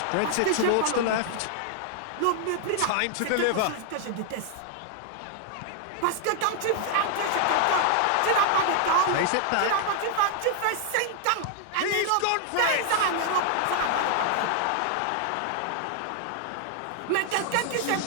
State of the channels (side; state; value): both; different; correlation -0.01